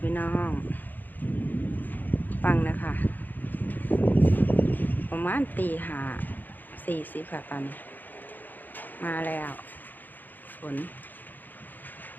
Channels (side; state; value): right; late; 0.086 ms